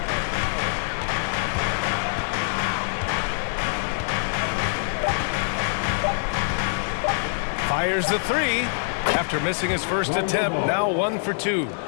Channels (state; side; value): silent; right; digital silence